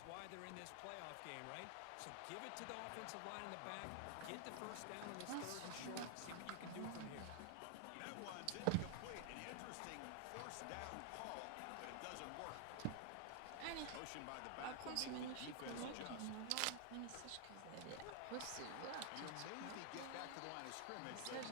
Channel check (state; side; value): different; both; correlation 0.00